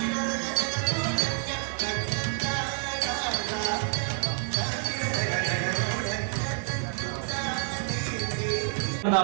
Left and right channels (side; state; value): left; silent; 56 dB below the other